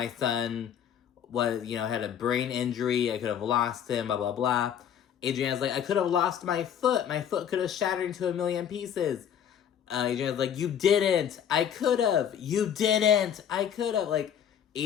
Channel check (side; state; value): right; quieter; 9.0 dB